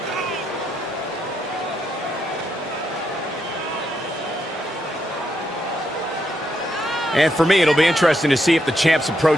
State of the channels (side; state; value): both; normal; correlation 0.80